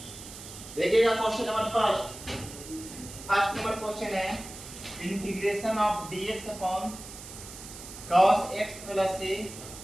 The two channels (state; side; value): noise; right; hiss, 13 dB below the sound